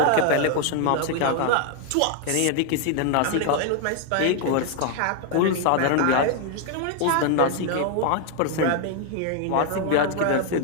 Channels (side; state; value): both; different; correlation 0.00